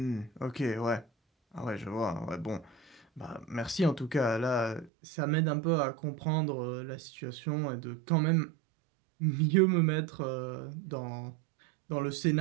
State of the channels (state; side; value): drops out; left; at 4.9 s